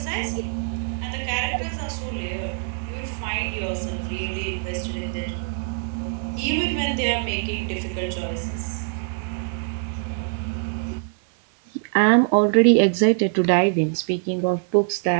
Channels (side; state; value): left; silent; 63 dB below the other